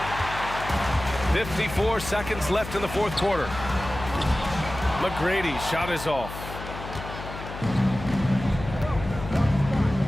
54 seconds left in the fourth quarter. McGrady's shot is off.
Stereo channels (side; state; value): left; noise; hum, 10 dB below the sound